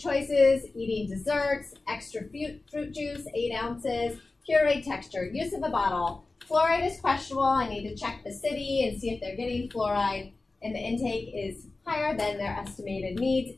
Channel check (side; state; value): right; quieter; 3.4 dB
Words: Eating desserts, extra fruit juice, 8 ounces, pureed texture, use of a bottle. Fluoride is questionable. I need to check the city and see if they're getting fluoride, and the intake is higher than their estimated needs,